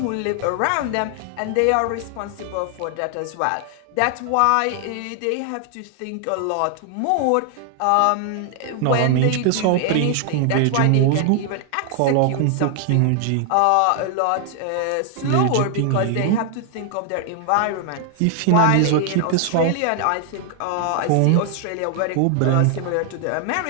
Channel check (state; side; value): different; both; correlation 0.00